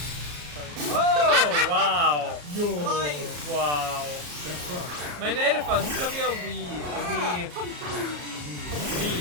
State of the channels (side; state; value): left; late; 34 ms